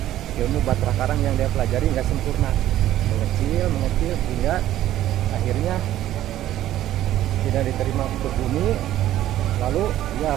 ilmu Batra Karang yang dia pelajari nggak sempurna, mengecil hingga akhirnya tidak diterima ke bumi. Lalu ya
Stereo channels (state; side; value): quieter; left; 13.1 dB